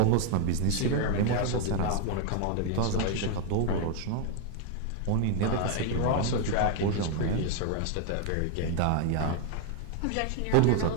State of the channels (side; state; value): both; different; correlation 0.01